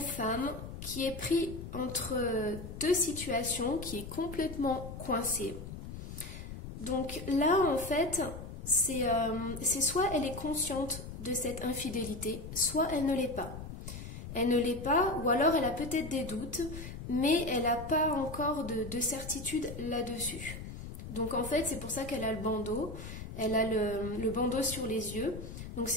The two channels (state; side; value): noise; left; rumble, 10 dB below the sound